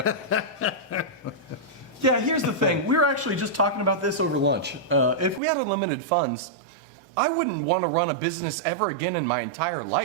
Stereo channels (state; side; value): drops out; left; at 5.4 s